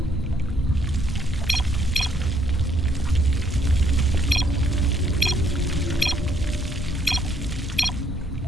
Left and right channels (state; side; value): normal; both; correlation 0.70